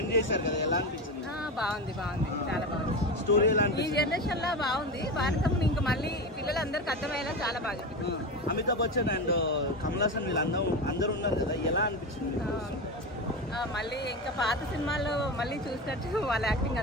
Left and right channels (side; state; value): both; normal; correlation 0.21